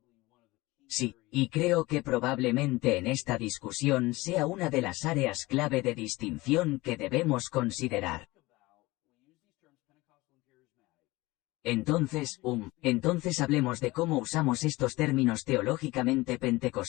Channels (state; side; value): quieter; right; 20.8 dB